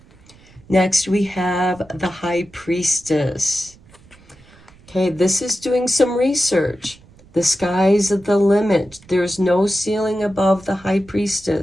Next, we have the High Priestess. Okay, this is doing some research. The sky's the limit. There's no ceiling above the High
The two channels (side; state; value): right; noise; rumble, 26 dB below the sound